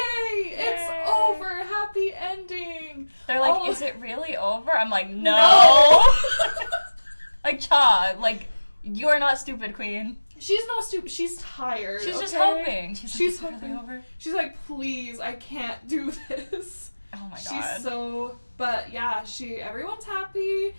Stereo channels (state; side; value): inverted; both; correlation -1.00